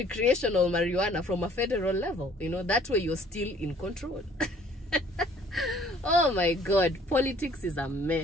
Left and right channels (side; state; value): both; normal; correlation 0.57